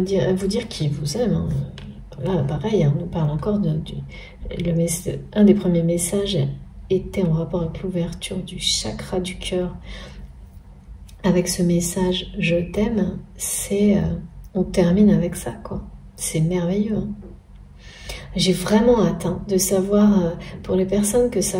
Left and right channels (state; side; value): identical; both; correlation 1.00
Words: vous dire qu'il vous aime. Hein. Là, pareil, on nous parle encore un des premiers messages était en rapport avec l'ouverture du chakra du cœur. Avec ce message « Je t'aime », on termine avec ça, quoi. C'est merveilleux. Hein. J'ai vraiment hâte de savoir, pour les personnes que